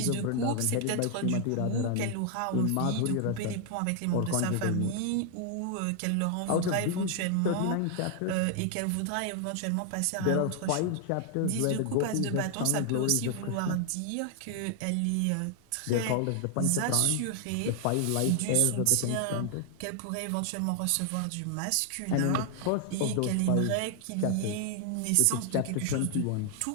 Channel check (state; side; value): different; both; correlation 0.00